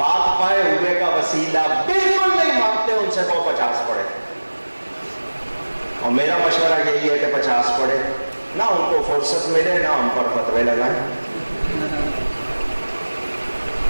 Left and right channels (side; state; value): both; inverted; correlation -1.00